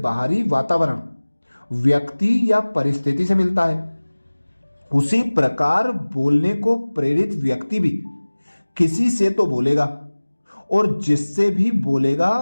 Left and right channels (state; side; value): inverted; both; correlation -1.00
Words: वातावरण, व्यक्ति या परिस्थिति से मिलता है। उसी प्रकार बोलने को प्रेरित व्यक्ति भी किसी से तो बोलेगा, और जिससे भी बोलेगा